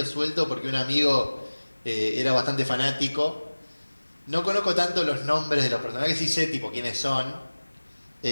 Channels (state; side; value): inverted; both; correlation -1.00